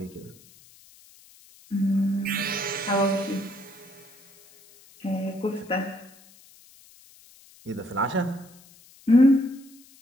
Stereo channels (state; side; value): noise; left; hiss, 25 dB below the sound